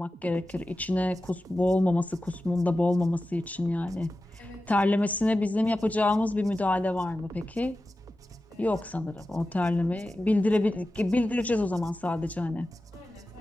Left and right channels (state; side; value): normal; both; correlation 0.93